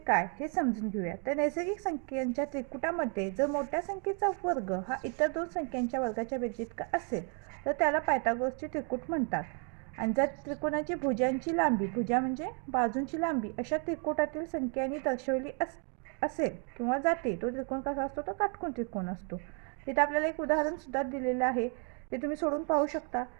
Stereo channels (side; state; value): left; quieter; 39.2 dB